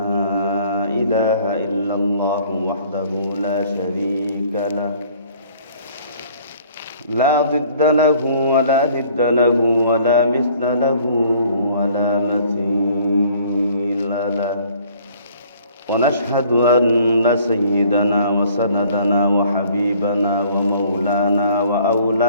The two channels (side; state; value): both; inverted; correlation -0.56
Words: إله إلا الله وحده لا شريك له لا ضد له ولا ند له ولا مثل له ولا مثيل له ونشهد أن سيدنا وسندنا وحبيبنا ومولانا